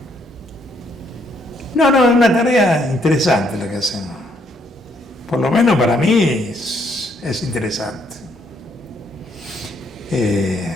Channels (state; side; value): normal; both; correlation 0.70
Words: No, es una tarea interesante la que hacemos. Por lo menos para mí es interesante.